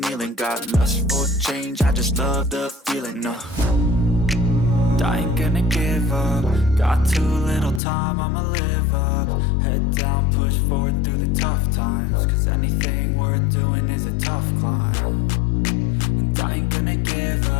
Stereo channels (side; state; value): right; drops out; at 7.8 s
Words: kneeling. Got lust for change, I just love the feeling. I ain't gonna give up. Got too little time, I'ma live up. Head down, push forward through the tough times. Cause anything worth doing is a tough climb. And I ain't gonna give